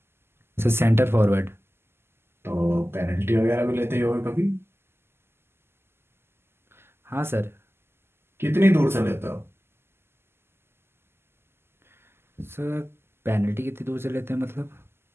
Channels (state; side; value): late; left; 0.12 ms